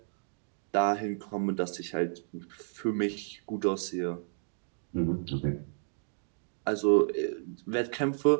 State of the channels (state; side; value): silent; left; digital silence